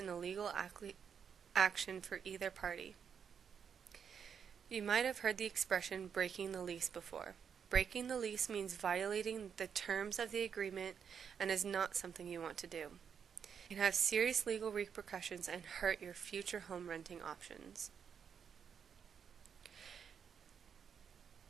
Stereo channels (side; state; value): left; quieter; 7.2 dB